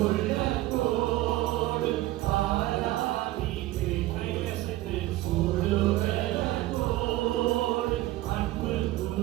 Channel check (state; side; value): quieter; left; 16.6 dB